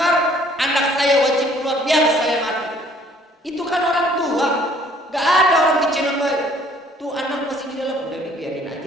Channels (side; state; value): both; normal; correlation 0.59